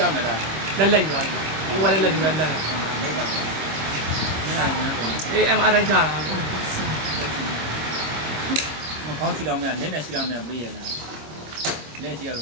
ော့မယ်လား လက်လက်ယူရတယ်ကိုကလက်လက်ဒီမဲ့လက် မိပါလက်နဲ့ညမ်းတယ် အေး MRI ချတာ မကောင်းရှိတော့မယ်လက်နဲ့ရှိတော့မယ်မေးရလားလက်ရှိရတေ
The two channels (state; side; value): late; left; 27 ms